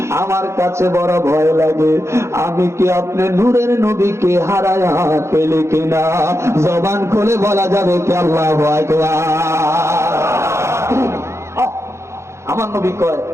আমার কাছে বড় ভয় লাগে, আমি কি আপনি নূরের নবীকে হারায়া পেলে কিনা? জবান খুলে বলা যাবে কি আল্লাহু আকবার। আমার নবী কয়,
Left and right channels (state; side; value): late; left; 0.13 ms